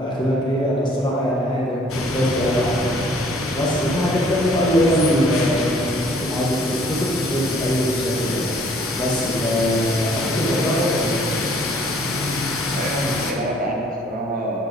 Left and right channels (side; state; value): both; normal; correlation 0.58